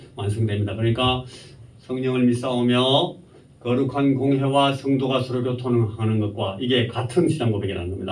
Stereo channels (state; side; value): identical; both; correlation 1.00